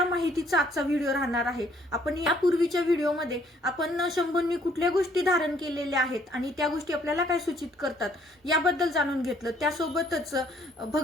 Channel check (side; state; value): both; normal; correlation 0.63